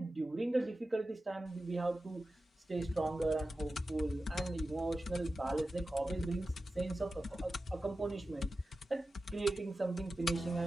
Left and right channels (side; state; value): both; normal; correlation 0.93